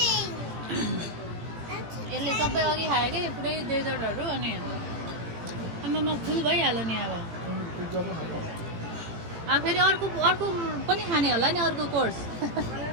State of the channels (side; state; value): left; late; 18 ms